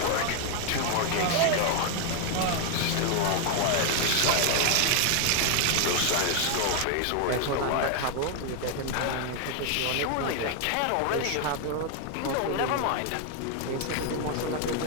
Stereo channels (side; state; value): both; different; correlation 0.01